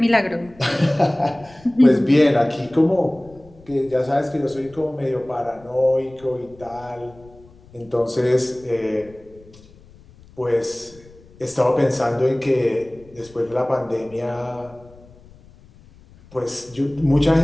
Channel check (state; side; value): noise; left; rumble, 25 dB below the sound